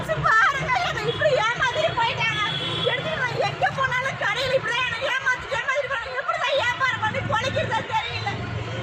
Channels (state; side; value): identical; both; correlation 1.00